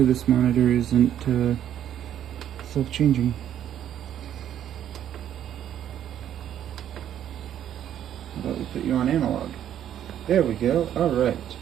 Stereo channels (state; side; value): quieter; left; 10.5 dB